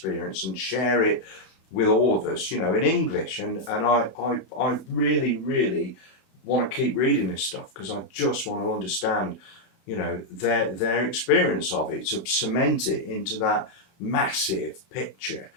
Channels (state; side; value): late; right; 32 ms